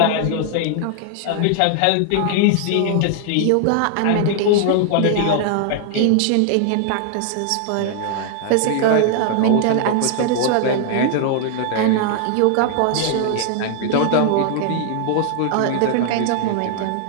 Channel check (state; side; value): different; both; correlation 0.00